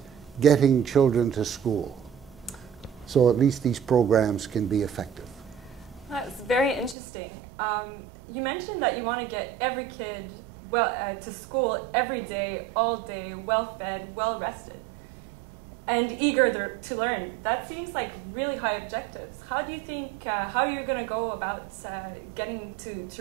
getting children to school, so at least these programs can be effective. That's very interesting. You mentioned that you want to get every kid to school every day, all day, well-fed, well-rested, and eager to learn. That seems like really high objectives. How do you think, how are you going to go about getting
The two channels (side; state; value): left; drops out; at 7.0 s